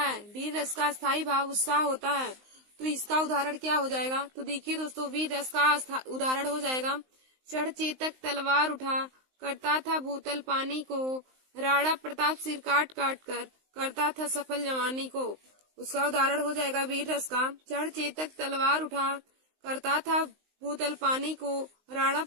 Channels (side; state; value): left; late; 19 ms